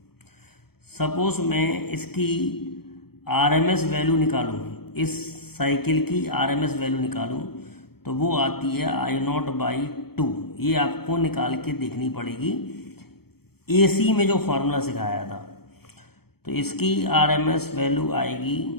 सपोज मैं इसकी RMS वैल्यू निकालूं, इस साइकिल की RMS वैल्यू निकालूं तो वो आती है I0/2। ये आपको निकाल के देखनी पड़ेगी AC में जो फॉर्मूला सिखाया था। तो इसकी RMS वैल्यू आएगी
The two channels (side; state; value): right; late; 0.96 ms